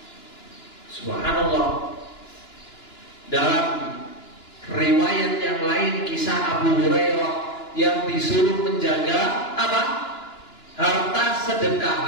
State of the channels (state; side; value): late; right; 2.9 ms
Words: Subhanallah. Dalam riwayat yang lain, kisah Abu Hurairah yang disuruh menjaga apa? Harta sedekah,